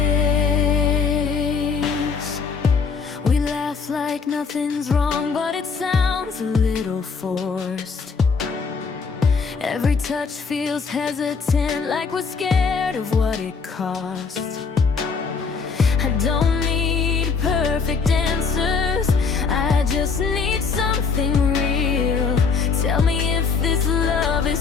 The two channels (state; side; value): quieter; right; 5.3 dB